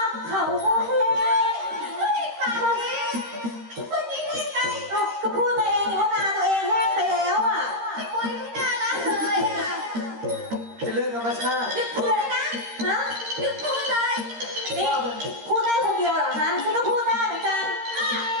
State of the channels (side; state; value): left; late; 13 ms